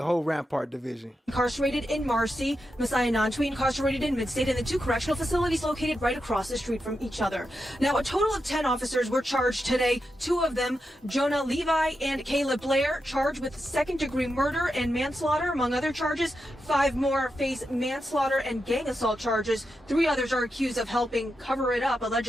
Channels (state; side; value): normal; both; correlation 0.87